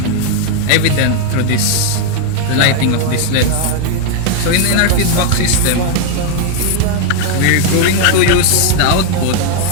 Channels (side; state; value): both; different; correlation 0.01